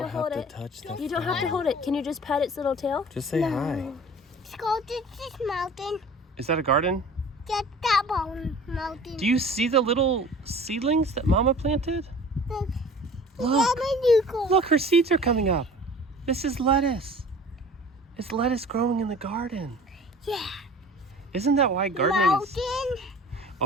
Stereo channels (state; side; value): normal; both; correlation 0.44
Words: don't hold have it. to touch the You don't have to hold it. Can you just pet its little tail? Just say hi. Let's go to this mountain. Is that a garden? Get that mountain. Do you see the little seedlings that Mama planted? Look. Look. Look, her seeds are coming up. This is lettuce. It's lettuce growing in the garden. Yeah. Isn't that why gardening is... Mountain.